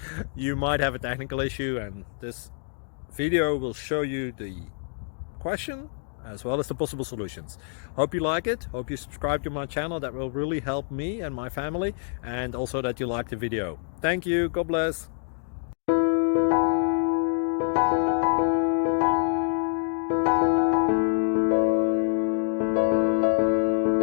you might have a technical issue and this video will show you the question as well as the possible solutions. Hope you like it, hope you subscribe to my channel. That will really help me and my family, and also that you like the video. Thank you, God bless.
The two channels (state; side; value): silent; right; digital silence